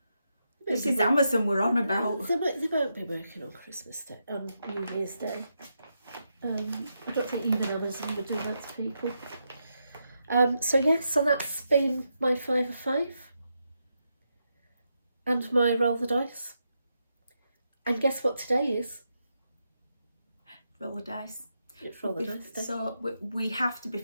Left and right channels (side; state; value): both; inverted; correlation -0.84